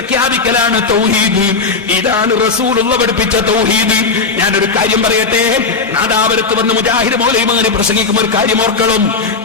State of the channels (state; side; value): quieter; right; 4.4 dB